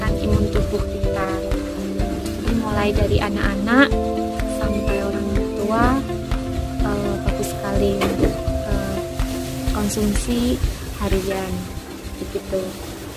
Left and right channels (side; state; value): both; identical; correlation 1.00